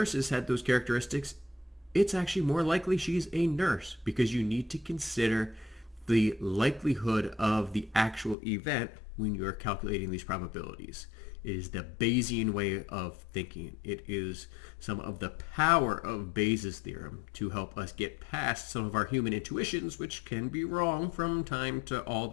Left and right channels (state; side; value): drops out; right; at 8.3 s